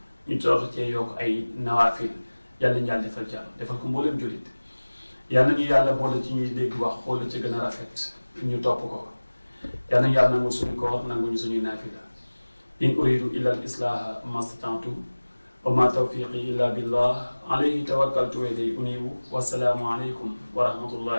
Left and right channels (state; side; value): inverted; both; correlation -1.00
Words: ñu toog cee yokk ay nawaafil yàlla nañu yàlla defal jàmm defal ko mboolem jullit yàlla nañu yàlla boole ci ñuy dégg wax xool la ci gën a rafet ñu topp ko yàlla nañu yàlla nangul suñu koor nanguñu suñuy naafila in uridu illa al islaha mastata'tu wa ma tawfiqi illa billah alayhi tawakkaltu wa ilayhi unibu wassalaamu alaykum wa